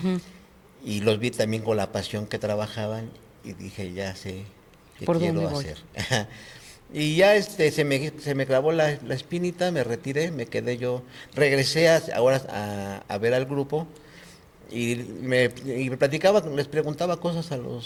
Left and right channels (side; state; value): both; identical; correlation 1.00